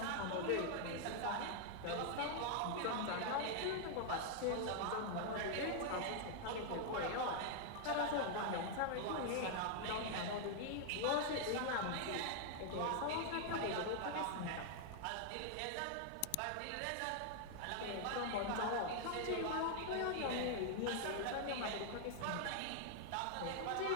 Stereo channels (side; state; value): both; different; correlation 0.00